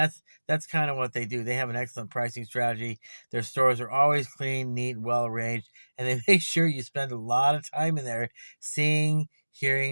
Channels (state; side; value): inverted; both; correlation -1.00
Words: kind of what they do. They have an excellent pricing strategy. Their stores are always clean, neat, well arranged, and they make sure you spend a lot of time in there seeing,